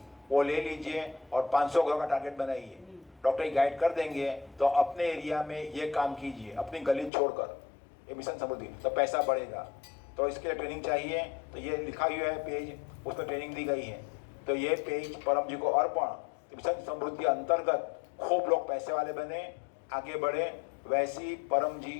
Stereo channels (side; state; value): right; drops out; at 7.1 s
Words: वो ले लीजिए और 500 घरों का टारगेट बनाइए। डॉक्टर गाइड कर देंगे, तो अपने एरिया में ये काम कीजिए, अपनी गली छोड़कर। ये मिशन समृद्धि, तो पैसा बढ़ेगा। तो इसके लिए ट्रेनिंग चाहिए, तो ये लिखा हुआ है पेज, उसमें ट्रेनिंग दी गई है। तो ये पेज परम जी को अर्पण। मिशन समृद्धि अंतर्गत खूब लोग पैसे वाले बने, आगे बढ़े, वैसी परम जी